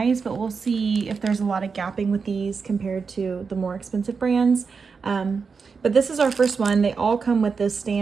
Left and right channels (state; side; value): quieter; left; 5.2 dB